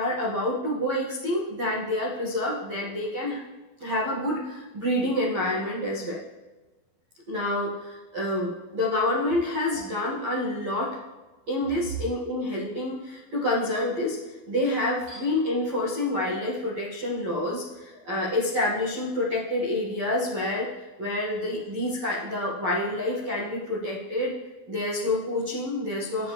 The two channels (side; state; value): left; late; 12 ms